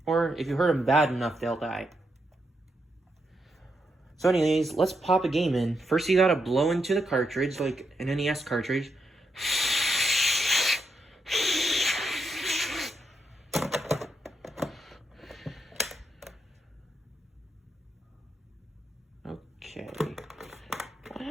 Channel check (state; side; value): normal; both; correlation 0.82